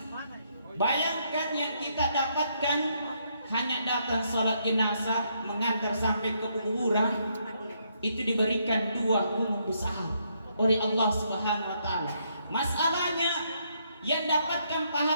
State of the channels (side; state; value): both; inverted; correlation -0.74